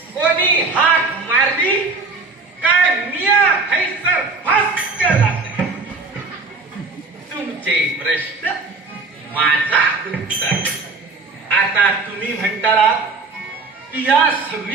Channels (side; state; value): left; quieter; 4.0 dB